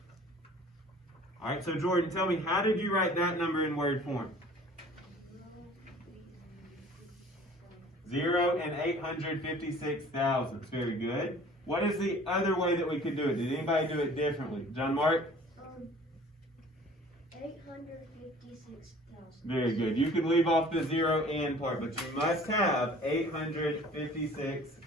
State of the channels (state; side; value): normal; both; correlation 0.49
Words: All right, so Jordan, tell me, how did you write that number in word form? 0 and 856 thousandths. Very good. What is the other way that we could do it? Did anybody do it differently? John Mark? 856,000. Very good. You can leave off the 0 and part, but you must have 856